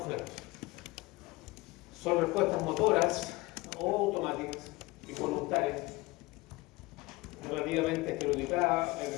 Son respuestas motoras o automáticas y voluntarias, relativamente estereotipadas, es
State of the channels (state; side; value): quieter; right; 22.0 dB